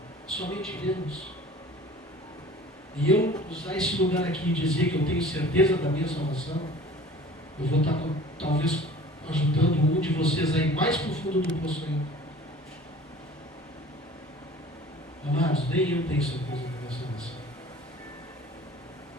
somente Deus. E eu usar esse lugar aqui e dizer que eu tenho certeza da minha salvação, eu vou estar talvez ajudando um de vocês aí mais para o fundo do poço ainda. Amados, nem eu tenho certeza da minha salvação.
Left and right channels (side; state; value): both; normal; correlation 0.45